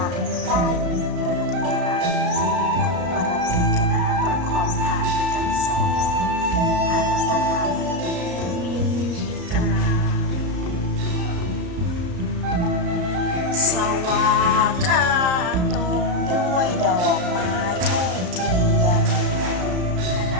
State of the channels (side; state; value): left; late; 34 ms